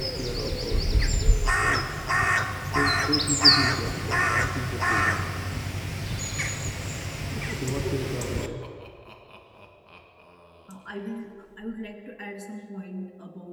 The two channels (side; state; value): both; identical; correlation 1.00